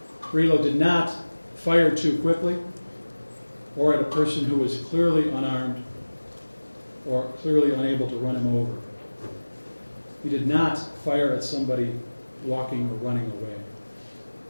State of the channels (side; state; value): both; inverted; correlation -1.00